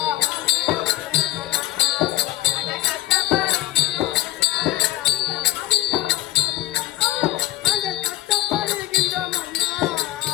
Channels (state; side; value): quieter; right; 15.6 dB